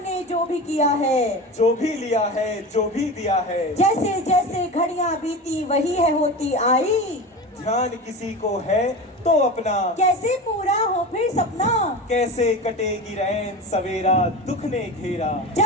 ने जो भी किया है, जो भी लिया है, जो भी दिया है, जैसे जैसे घड़ियां बीती वही है होती आई। ध्यान किसी को है तो अपना, कैसे पूरा हो फिर सपना, कैसे कटेगी रैन सवेरा दुख ने घेरा।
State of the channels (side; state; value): both; normal; correlation 0.28